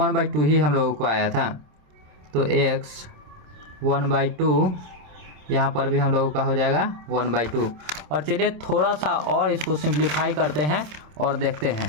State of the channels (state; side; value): late; left; 27 ms